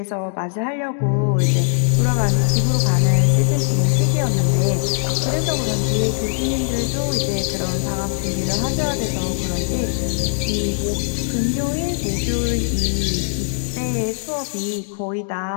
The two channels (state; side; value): silent; right; digital silence